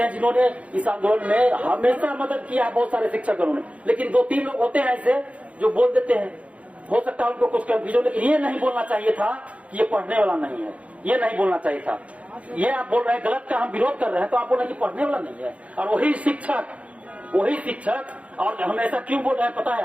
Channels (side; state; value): left; late; 0.065 ms